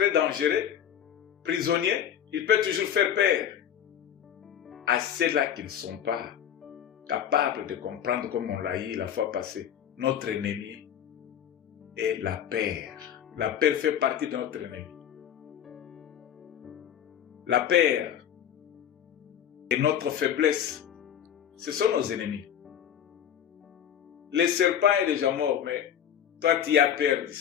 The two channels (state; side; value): quieter; right; 9.5 dB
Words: dangereux, prisonnier, il peut toujours faire peur à ceux-là qui ne sont pas capables de comprendre, comme on l'a dit la fois passée, notre ennemi est la peur. La peur fait partie de notre ennemi. La peur et notre faiblesse, ce sont nos ennemis. Le serpent est déjà mort, mais toi tu as peur du